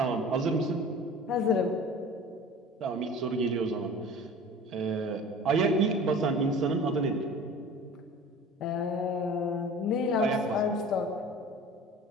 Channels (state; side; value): normal; both; correlation 0.40